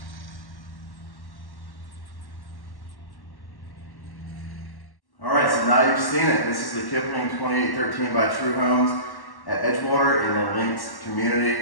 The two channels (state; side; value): late; right; 1.1 ms